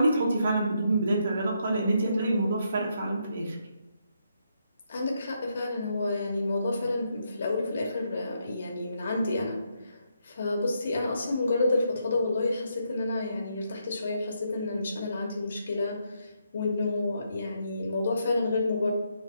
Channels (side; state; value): both; inverted; correlation -0.78